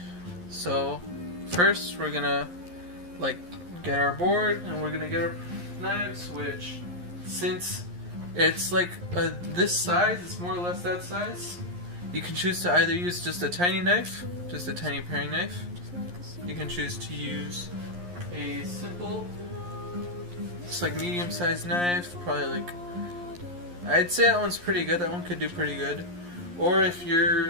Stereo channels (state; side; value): late; left; 11 ms